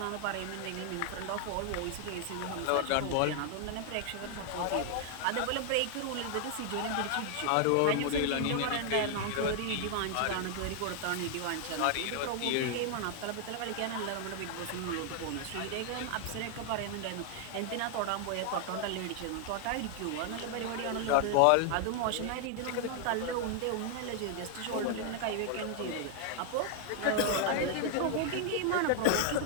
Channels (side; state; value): both; different; correlation 0.00